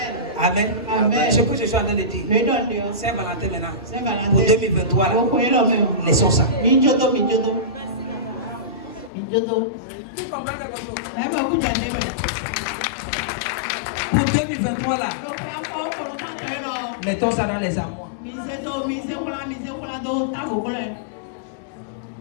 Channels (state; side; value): drops out; right; at 9.1 s